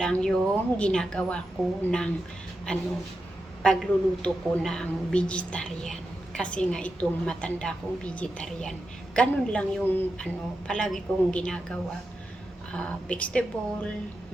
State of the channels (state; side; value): normal; both; correlation 0.88